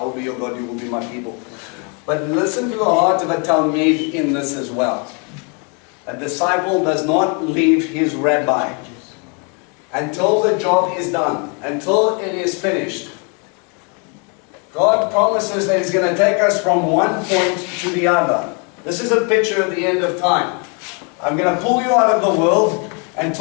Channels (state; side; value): quieter; right; 35.7 dB